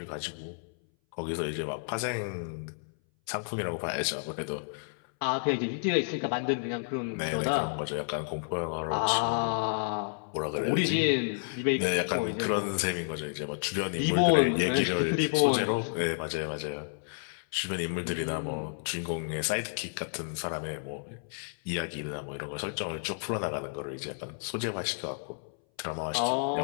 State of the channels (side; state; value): right; silent; 57 dB below the other